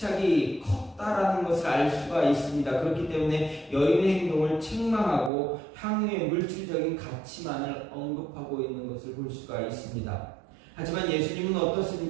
컸다라는 것을 알 수가 있습니다. 그렇기 때문에 여인의 행동을 책망하고 향유의 물질적인 가치만을 언급하고 있는 것을 볼 수가 있습니다. 하지만 예수님은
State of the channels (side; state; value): left; drops out; at 5.3 s